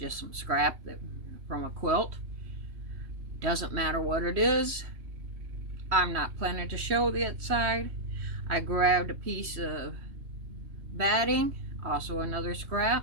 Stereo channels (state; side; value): late; left; 3.1 ms